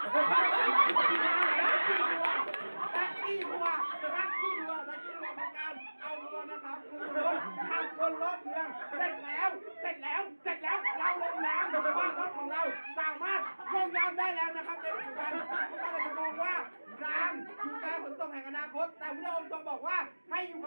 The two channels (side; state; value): both; inverted; correlation -1.00